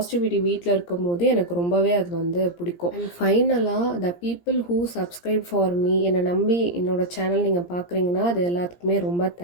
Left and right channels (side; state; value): right; late; 17 ms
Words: வீட்டில் இருக்கும் போது எனக்கு ரொம்பவே அது வந்து பிடிக்கும். அண்ட் ஃபைனலாக the people who subscribe for me, என்னை நம்பி என்னோடய சேனல் நீங்கள் பார்க்குறீங்கன்னா அது எல்லாத்துக்குமே ரொம்ப